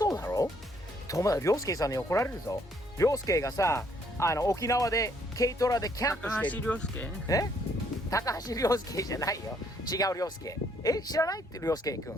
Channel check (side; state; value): both; normal; correlation 0.67